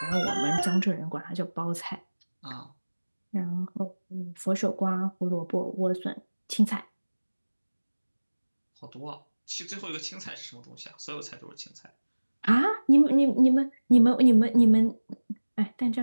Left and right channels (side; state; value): both; inverted; correlation -1.00